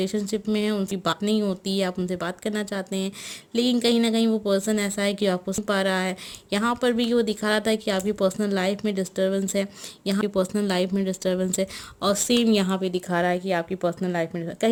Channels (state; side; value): identical; both; correlation 1.00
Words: में हैं उनकी बात नहीं होती है, आप उनसे बात करना चाहते हैं, लेकिन कहीं ना कहीं वो पर्सन ऐसा है कि आपको सुन पा रहा है। यहाँ पर भी वो दिखा रहा था कि आपकी पर्सनल लाइफ में डिस्टर्बेंस है, यहाँ की पर्सनल लाइफ में डिस्टर्बेंस है, और सेम यहाँ पे दिखा रहा है कि आपकी पर्सनल लाइफ में